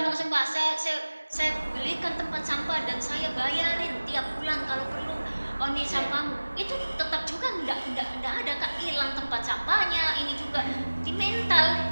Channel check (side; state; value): both; inverted; correlation -1.00